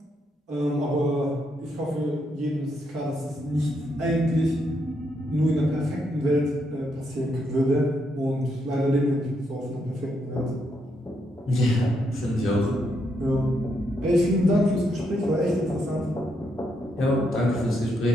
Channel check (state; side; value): normal; both; correlation 0.78